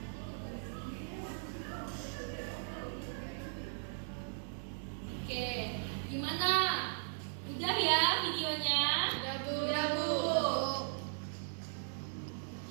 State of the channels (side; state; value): left; silent; digital silence